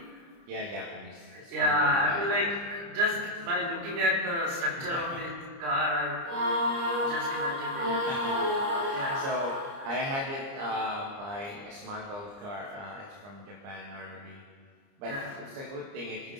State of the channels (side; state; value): left; late; 29 ms